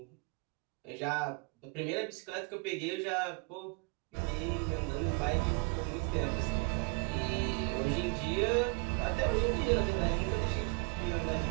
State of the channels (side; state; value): left; quieter; 31.2 dB